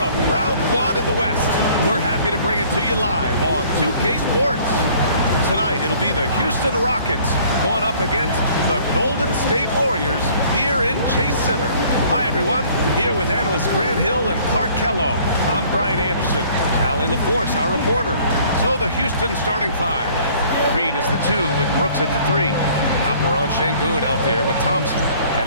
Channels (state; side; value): inverted; both; correlation -0.55